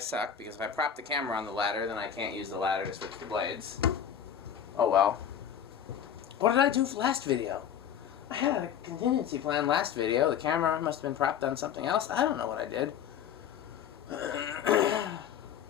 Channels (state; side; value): quieter; right; 8.8 dB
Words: because if I prop the camera on the ladder, then I can't use the ladder to switch the blades. Oh well. What did I do for last video? I had a contingency plan last video. The camera must have been propped on something else. I don't know what I did.